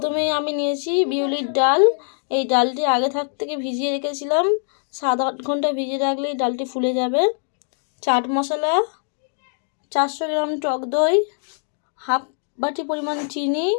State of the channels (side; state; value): right; silent; digital silence